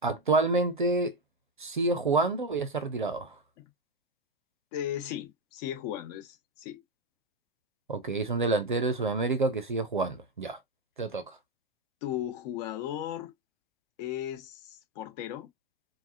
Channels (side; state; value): both; normal; correlation 0.09